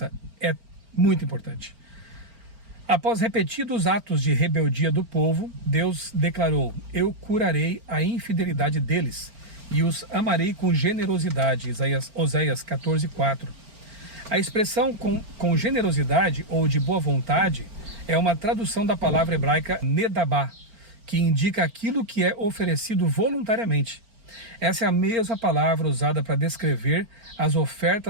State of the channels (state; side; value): late; left; 4.4 ms